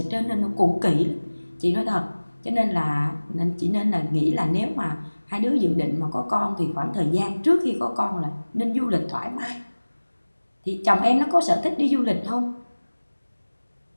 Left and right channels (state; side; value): inverted; both; correlation -1.00